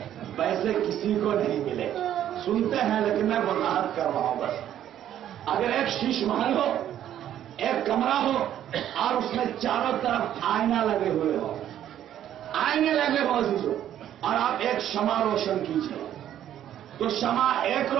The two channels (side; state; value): left; quieter; 11.1 dB